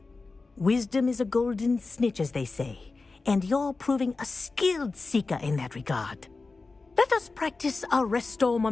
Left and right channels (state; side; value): quieter; right; 3.8 dB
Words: Wisdom is a golden snitch, as they say, and you're proving a skilled seeker in that regard. Let us practice our restore